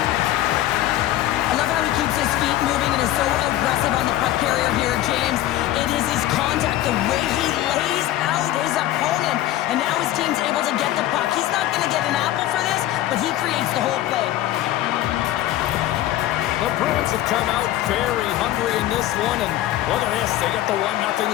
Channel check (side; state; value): right; quieter; 14.2 dB